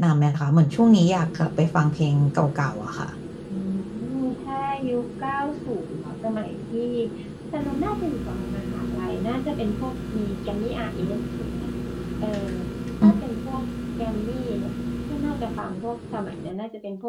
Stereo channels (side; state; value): both; identical; correlation 1.00